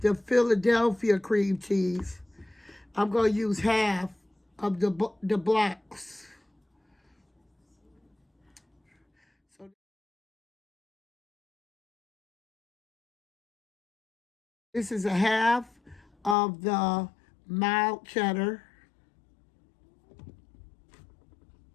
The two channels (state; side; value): drops out; right; at 16.4 s